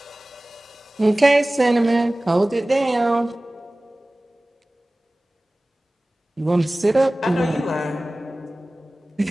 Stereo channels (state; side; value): normal; both; correlation 0.98